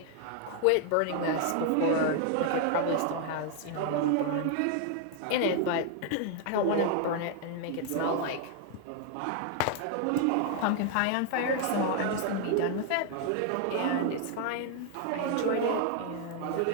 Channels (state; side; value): different; both; correlation 0.00